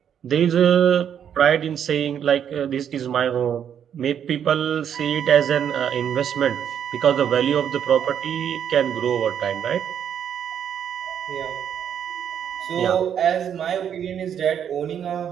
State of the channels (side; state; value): left; quieter; 8.8 dB